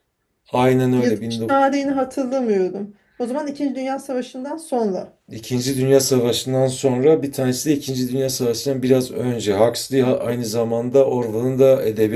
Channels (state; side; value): identical; both; correlation 1.00